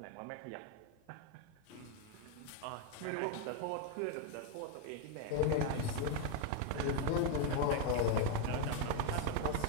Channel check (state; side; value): different; both; correlation 0.01